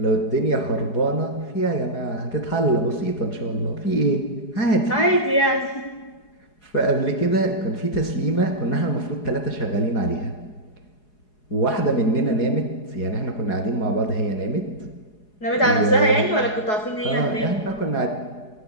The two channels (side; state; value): right; late; 4.8 ms